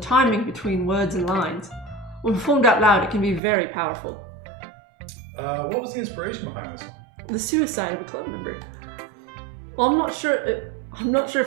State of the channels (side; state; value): left; drops out; at 3.4 s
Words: between words and lines. When performed out loud, it can be very powerful. What was the inspiration behind this one? The suicide of a club member. Well, I'm not sure